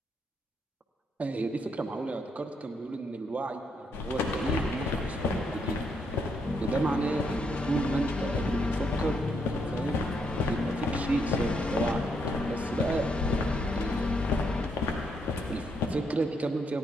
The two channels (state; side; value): normal; both; correlation 0.76